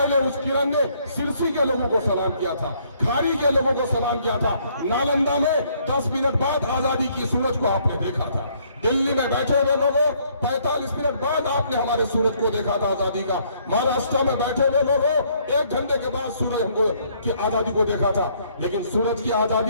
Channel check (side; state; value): both; inverted; correlation -0.66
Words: उस किरण ने सिरसी के लोगों को सलाम किया था, खाड़ी के लोगों को सलाम किया था। नालंदा में 10 मिनट बाद आजादी की सूरज को आपने देखा था। दिल्ली में बैठे हुए लोगों 45 मिनट बाद आपने हमारे सूरज को देखा था आजादी का। महाराष्ट्र में बैठे हुए लोगों 1 घंटे के बाद सूरज हमको की आजादी को देखा था। लेकिन सूरज की